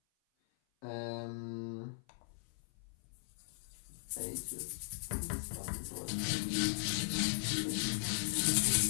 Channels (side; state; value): right; silent; 52 dB below the other